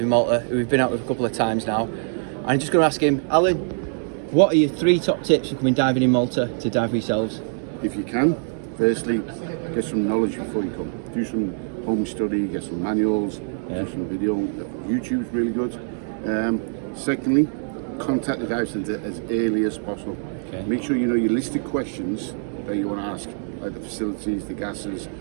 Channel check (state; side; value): silent; left; digital silence